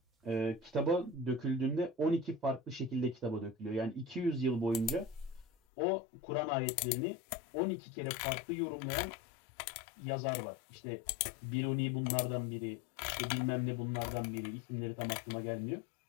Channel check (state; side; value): drops out; right; at 5.5 s